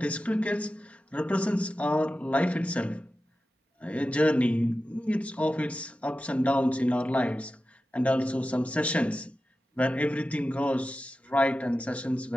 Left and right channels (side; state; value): both; normal; correlation 0.93